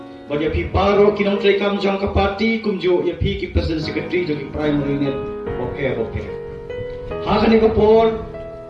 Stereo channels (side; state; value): both; identical; correlation 1.00